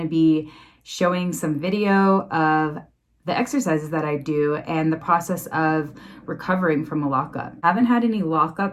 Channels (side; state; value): both; identical; correlation 1.00